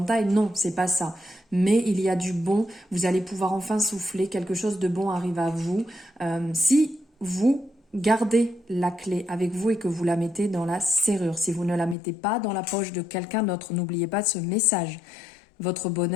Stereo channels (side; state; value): right; drops out; at 12.0 s